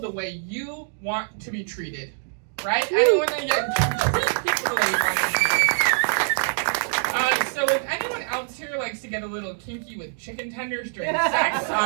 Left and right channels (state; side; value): silent; left; digital silence